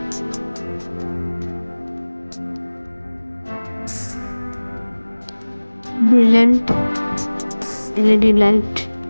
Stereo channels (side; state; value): both; inverted; correlation -1.00